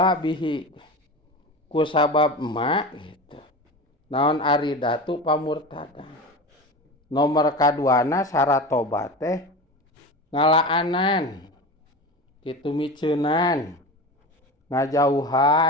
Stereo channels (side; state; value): both; normal; correlation 0.28